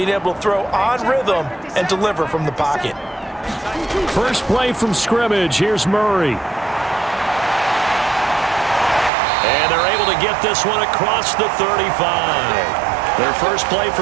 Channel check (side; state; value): left; drops out; at 9.1 s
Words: able to throw on rhythm and deliver from the pocket. First play from scrimmage. Here's Murray. And they're able to get this one across the 35. Their first play